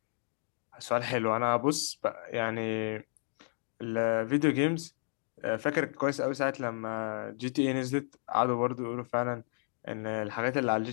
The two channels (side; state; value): right; silent; digital silence